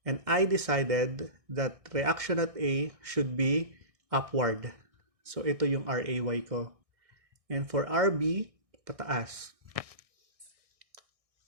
And I decided that reaction at A should be upward. So ito yung RAY ko. And for RB, pataas.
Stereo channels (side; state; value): left; late; 1.6 ms